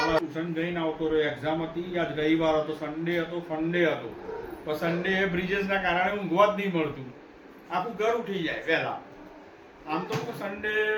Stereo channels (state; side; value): identical; both; correlation 1.00